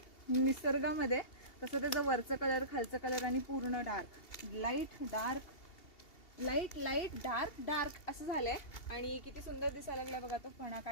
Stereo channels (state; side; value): late; right; 2.7 ms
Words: निसर्गामध्ये, तसं त्याचं वरचं कलर, खालचं कलर आणि पूर्ण dark, light dark, light light dark dark असं झालंय. आणि किती सुंदर दिसायला लागला बघा तो फणा